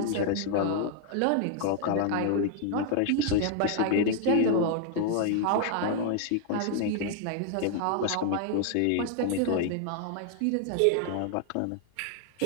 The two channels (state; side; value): different; both; correlation 0.00